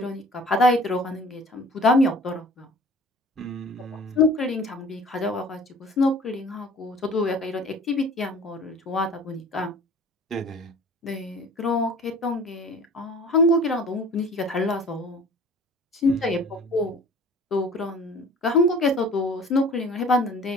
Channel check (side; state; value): both; normal; correlation 0.46